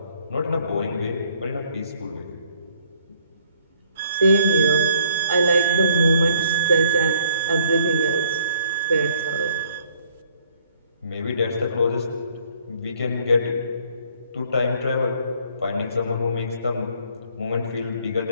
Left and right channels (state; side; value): inverted; both; correlation -0.62